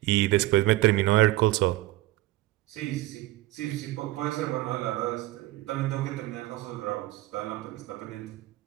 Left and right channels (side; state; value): left; quieter; 17.6 dB